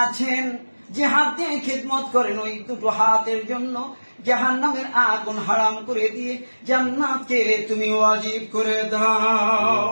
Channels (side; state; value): both; inverted; correlation -1.00